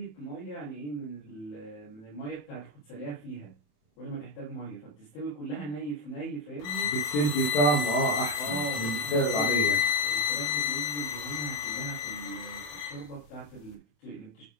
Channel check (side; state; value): right; late; 27 ms